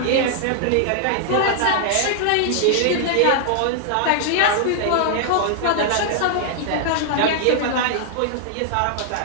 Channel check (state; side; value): different; both; correlation -0.01